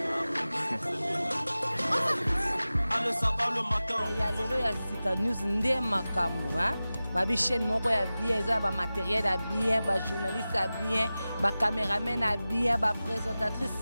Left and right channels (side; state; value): both; inverted; correlation -0.96